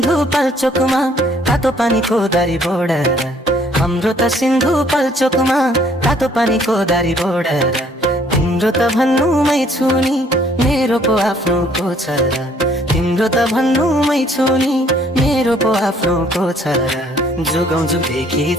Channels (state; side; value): normal; both; correlation 0.62